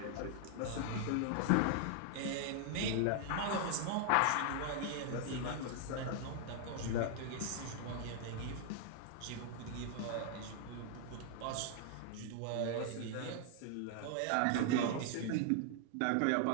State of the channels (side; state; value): both; different; correlation 0.00